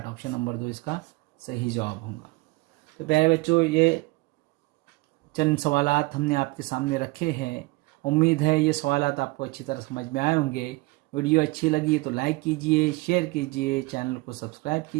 ऑप्शन नंबर 2 इसका सही जवाब होगा। तो प्यारे बच्चों, ये चंद सवालात हमने आपके सामने रखे हैं। उम्मीद है ये सवालात आपको अच्छी तरह समझ में आए होंगे। वीडियो अच्छी लगी तो लाइक कीजिए, शेयर कीजिए, चैनल को सब्सक्राइब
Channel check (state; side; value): quieter; left; 23.3 dB